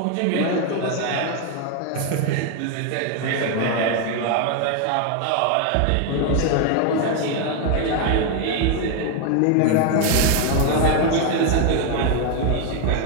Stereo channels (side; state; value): both; different; correlation 0.01